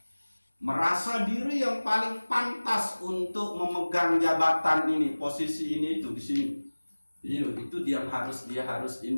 merasa diri yang paling pantas untuk memegang jabatan ini, posisi ini itu di sini. Itu dia harus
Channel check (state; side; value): inverted; both; correlation -1.00